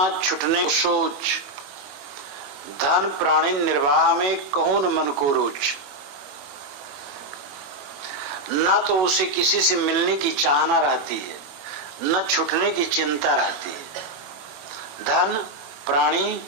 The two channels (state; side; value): late; left; 21 ms